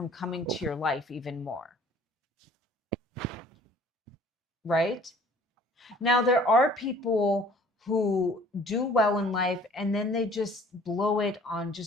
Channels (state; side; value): normal; both; correlation 0.54